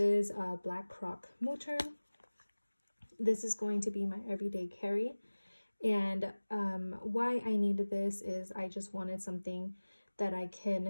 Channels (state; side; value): inverted; both; correlation -1.00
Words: a black croc motor. This is going to be my everyday carry. And why I needed this is I just wanted something that I